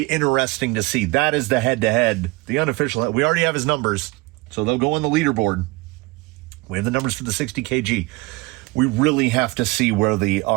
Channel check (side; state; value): left; quieter; 23.5 dB